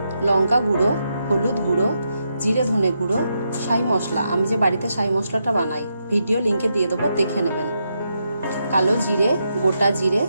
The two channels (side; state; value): both; inverted; correlation -0.83